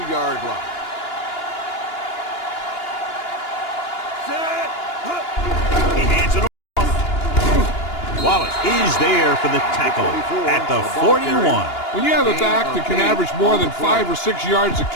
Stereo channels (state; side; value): late; right; 2.9 ms